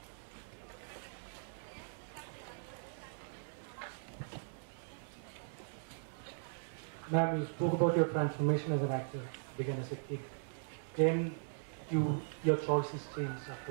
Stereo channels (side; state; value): left; silent; digital silence